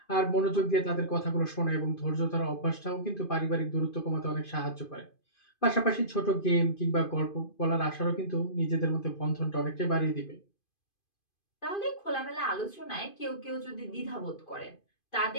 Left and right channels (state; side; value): late; right; 2.5 ms